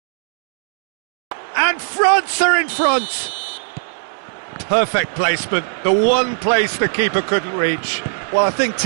And France are in front! Perfect placement, the one place the keeper couldn't reach. Well, I think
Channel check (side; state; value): left; silent; digital silence